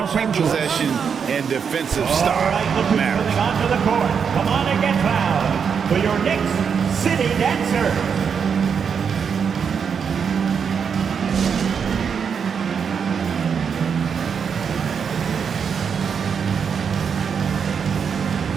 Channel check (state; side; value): quieter; left; 6.7 dB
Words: every Angeles. possession and defensive All stop right, look who's matters. coming onto the court. Come on and get fouled for your Knicks City Dancer.